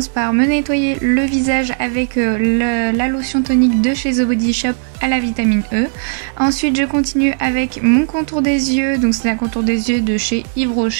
par me nettoyer le visage avec la lotion tonique de chez The Body Shop à la vitamine E. Ensuite je continue avec mon contour des yeux, donc c'est un contour des yeux de chez Yves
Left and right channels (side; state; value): left; silent; digital silence